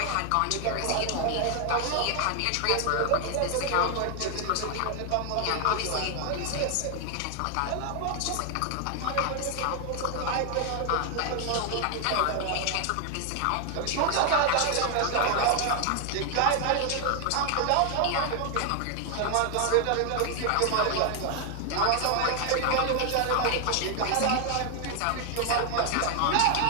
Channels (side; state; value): both; different; correlation 0.00